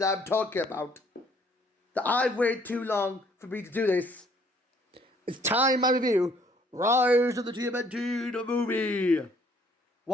I'm talking about that I've waited too long for me to do this. It's time I review Rise of the TMNT, the movie.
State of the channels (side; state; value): both; normal; correlation 0.62